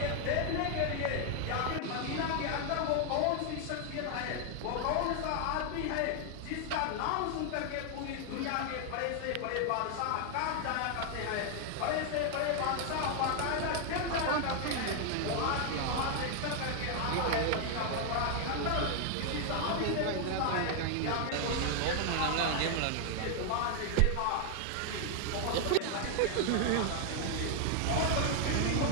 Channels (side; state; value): both; different; correlation 0.00